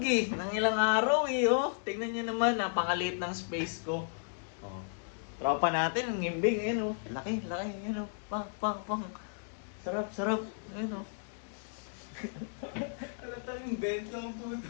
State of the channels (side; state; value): right; silent; digital silence